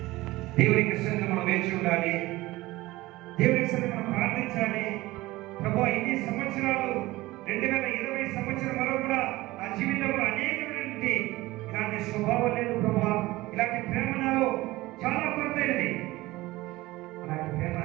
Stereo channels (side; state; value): left; quieter; 19.0 dB